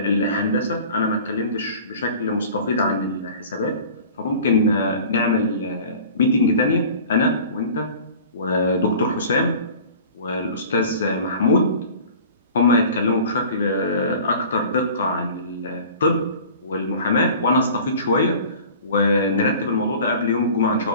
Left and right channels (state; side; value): inverted; both; correlation -0.43